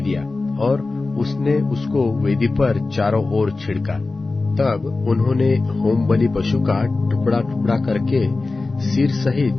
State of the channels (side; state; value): right; quieter; 3.5 dB